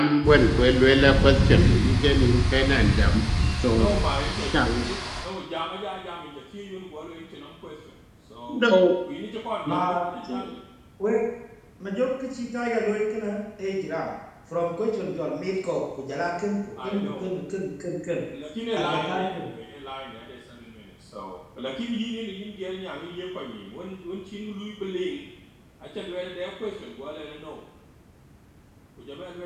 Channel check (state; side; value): identical; both; correlation 1.00